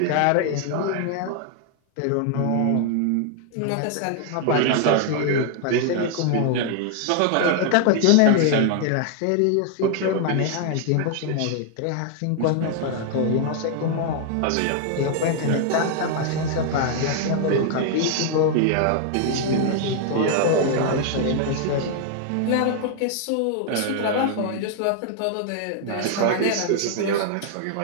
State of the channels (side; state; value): both; different; correlation 0.00